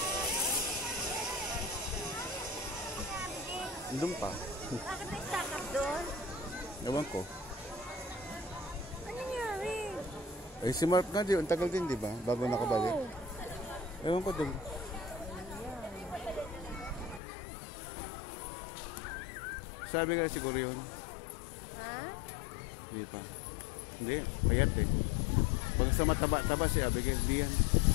Doon pa. Bakit may stack up doon? Ewan ko. Ano nangyari? Eh si Mark nga, ang tagal din, di ba? Bago nakabalik. Ewan ko doon. Sabi nga siguro yun. Ha? Hindi pa. Hindi, payat eh. Pag sa mataba-taba si Abigail, di yan.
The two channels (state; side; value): drops out; right; at 17.2 s